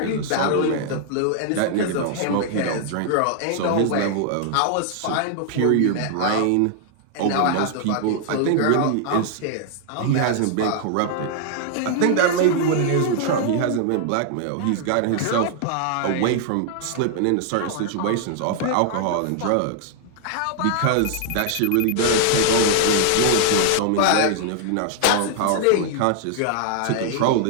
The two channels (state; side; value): different; both; correlation 0.00